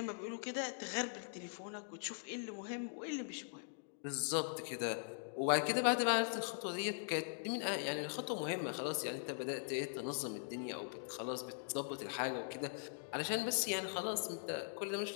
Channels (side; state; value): right; silent; digital silence